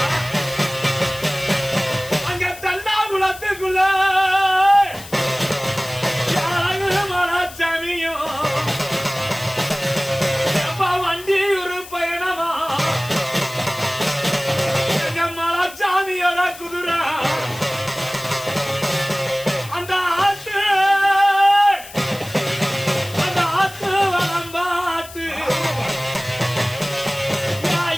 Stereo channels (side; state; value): left; noise; hiss, 16 dB below the sound